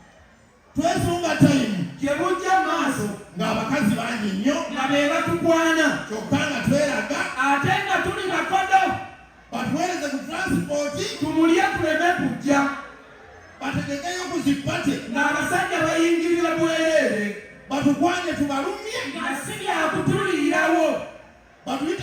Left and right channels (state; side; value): identical; both; correlation 1.00